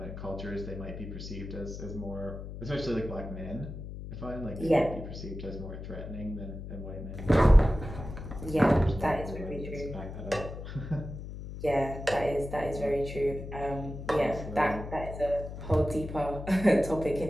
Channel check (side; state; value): left; noise; hum, 9 dB below the sound